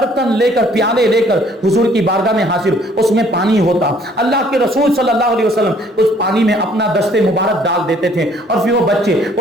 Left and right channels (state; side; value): normal; both; correlation 0.60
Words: لے کر, پیالے لے کر حضور کی بارگاہ میں حاضر, اس میں پانی ہوتا. اللہ کے رسول صلی اللہ علیہ وسلم اس پانی میں اپنا دست مبارک ڈال دیتے تھے اور پھر وہ بچے